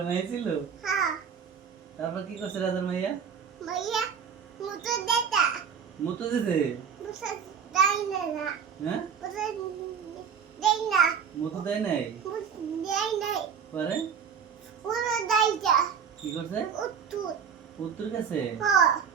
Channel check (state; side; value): quieter; left; 7.0 dB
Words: মাইয়া ছিল। তারপর কি করছে রাজার মাইয়া? মুতো দিছে। হ্যাঁ, মুতো দেয় নাই। পরে কি করছে? উত্তর গেছে।